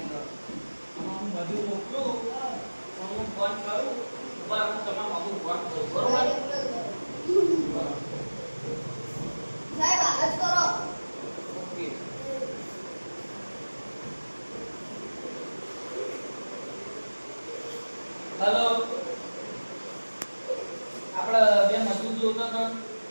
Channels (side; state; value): both; inverted; correlation -1.00